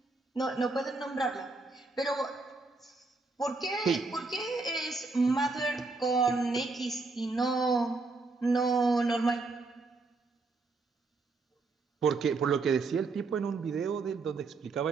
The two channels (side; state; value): left; quieter; 3.8 dB